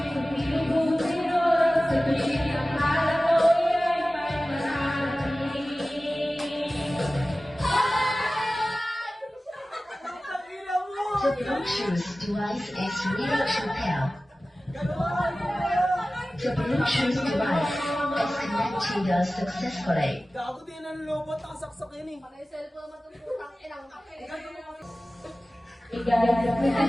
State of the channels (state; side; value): normal; both; correlation 0.96